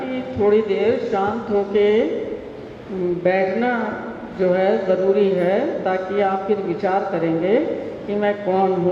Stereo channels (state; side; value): identical; both; correlation 1.00